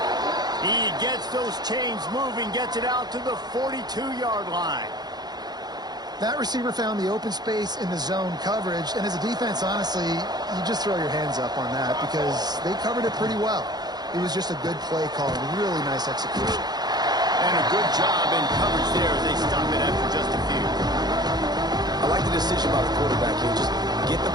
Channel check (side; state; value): left; late; 0.20 ms